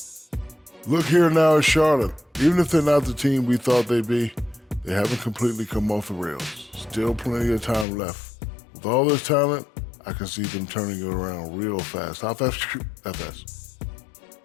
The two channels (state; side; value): drops out; right; at 7.9 s